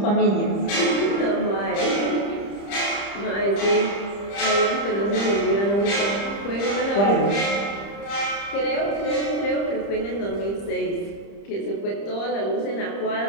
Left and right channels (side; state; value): right; late; 30 ms